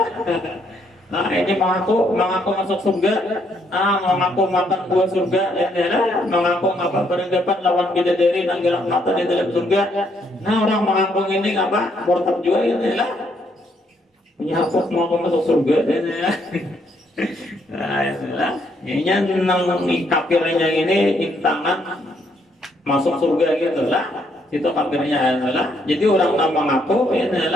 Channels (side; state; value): both; normal; correlation 0.72